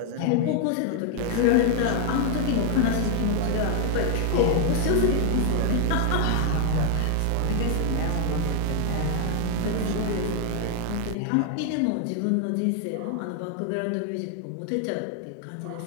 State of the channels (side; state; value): both; different; correlation 0.00